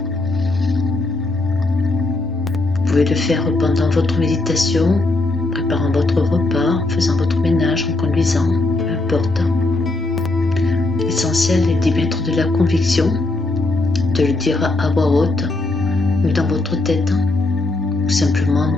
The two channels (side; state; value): right; quieter; 3.0 dB